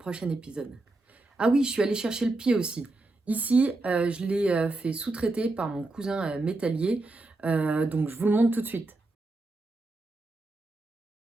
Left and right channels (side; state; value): left; quieter; 3.0 dB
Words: épisode. Ah oui, je suis allée chercher le pied aussi. Ici, je l'ai fait sous-traiter par mon cousin métallier, donc je vous le montre tout de suite.